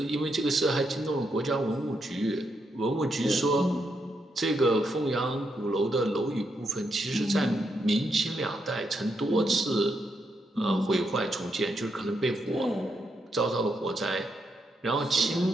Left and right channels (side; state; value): both; normal; correlation 0.80